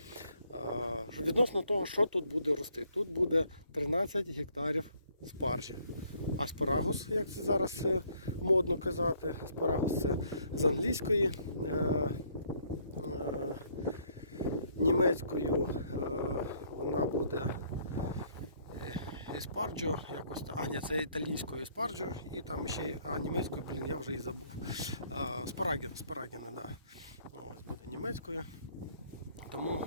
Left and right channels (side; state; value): both; inverted; correlation -0.65